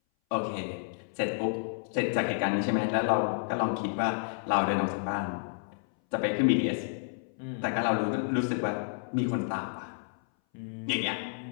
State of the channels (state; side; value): silent; right; 58 dB below the other